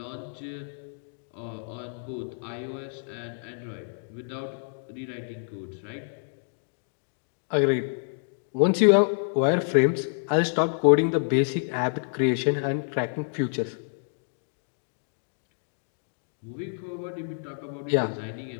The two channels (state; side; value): silent; right; digital silence